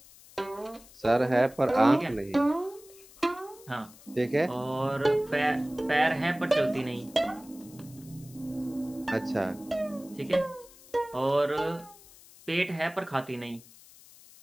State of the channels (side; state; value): left; noise; hiss, 22 dB below the sound